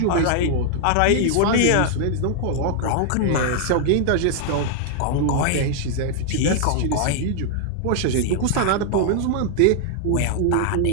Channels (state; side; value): different; both; correlation 0.00